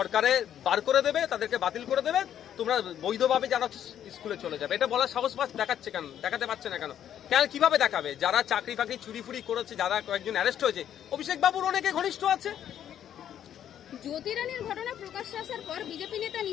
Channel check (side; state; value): right; quieter; 10.2 dB